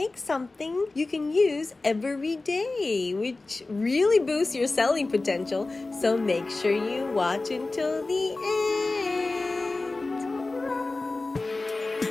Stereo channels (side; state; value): right; quieter; 3.3 dB